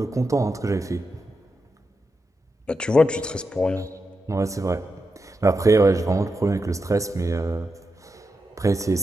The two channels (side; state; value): both; normal; correlation 0.87